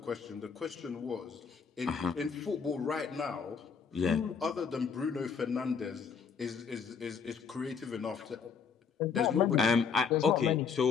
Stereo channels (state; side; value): quieter; right; 6.1 dB